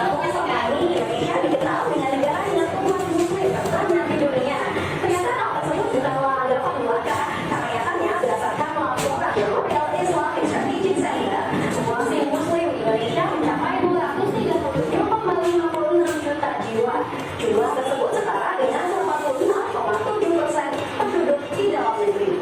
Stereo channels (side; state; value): both; identical; correlation 1.00